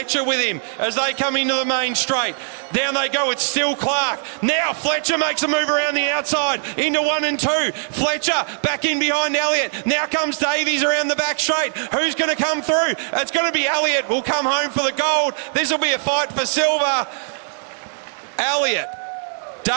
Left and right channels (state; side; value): silent; left; 65 dB below the other